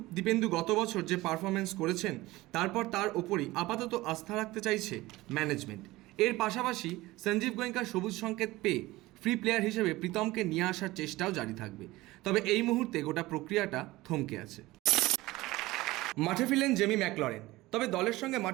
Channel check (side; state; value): left; quieter; 19.0 dB